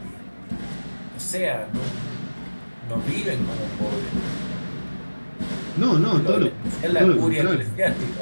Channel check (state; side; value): inverted; both; correlation -1.00